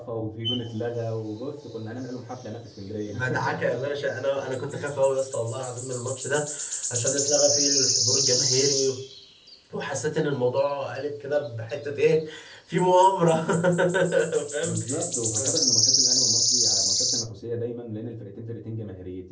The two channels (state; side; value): identical; both; correlation 1.00